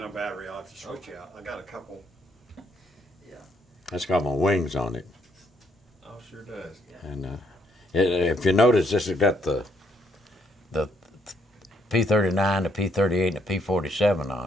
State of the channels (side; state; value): both; normal; correlation 0.71